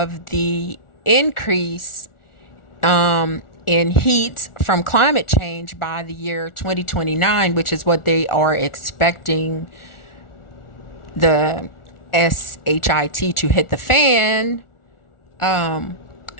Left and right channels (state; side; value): late; right; 1.4 ms